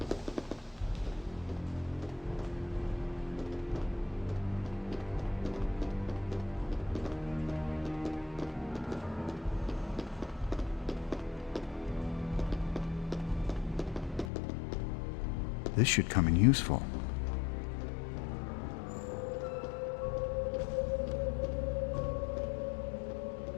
This should come in useful.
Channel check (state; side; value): drops out; right; at 14.3 s